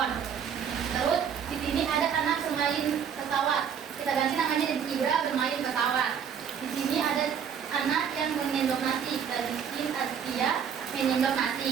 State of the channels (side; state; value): left; quieter; 7.7 dB